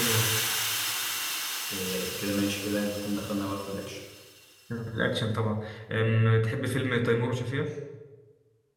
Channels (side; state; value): both; identical; correlation 1.00